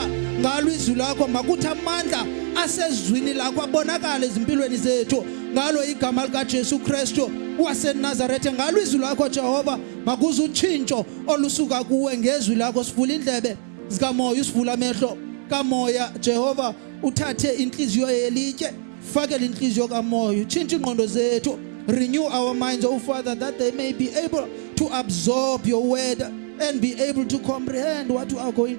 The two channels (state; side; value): silent; left; 55 dB below the other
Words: ngalo izwi lakho, makuthi amandla asezwini lakho abonakala ezimpilweni zethu ngalo igama lika Jesu Kristu waseNazaretha. Ngalo izwi lakho Jehova makuze utshintsho olusuka kuwe ngezwi lakho. Sivula indlebe zikamoya, usivula amehlo kamoya Jehova, uthathe inhliziyo yelitye, fakele inhliziyo kamoya, utshintshe ingqondo zethu. Renew our minds, oh Father, that they may be able to absorb your word and be able to comprehend what you are going